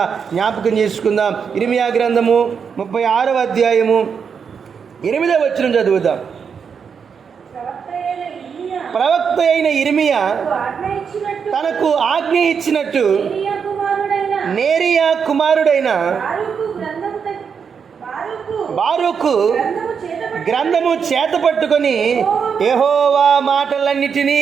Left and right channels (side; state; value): left; quieter; 6.5 dB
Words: జ్ఞాపకం చేసుకుందాం. ఇర్మియా గ్రంథము 36వ అధ్యాయము 8వ వచనం చదువుదాం. ప్రవక్త అయిన ఇర్మియా తనకు ఆజ్ఞ ఇచ్చినట్టు నేరియా కుమారుడైన బారూకు గ్రంథము చేత పట్టుకొని యెహోవా